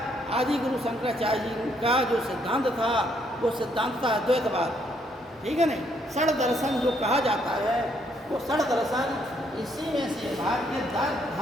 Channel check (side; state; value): both; normal; correlation 0.71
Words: आदि गुरु शंकराचार्य जी का जो सिद्धांत था वो सिद्धांत था अद्वैतवाद। ठीक है नहीं, षड दर्शन जो कहा जाता है वो षड दर्शन इसी में से भारतीय